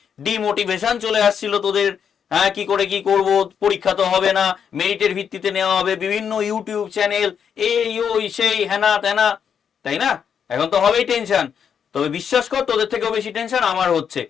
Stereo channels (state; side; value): quieter; right; 7.5 dB